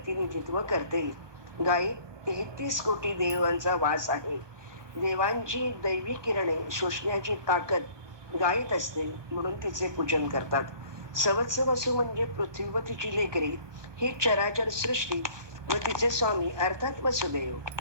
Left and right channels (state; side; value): late; left; 1.2 ms